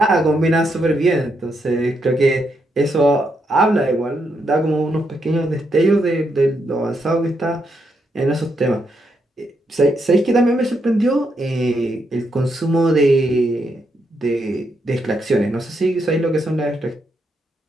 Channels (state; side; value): normal; both; correlation 0.80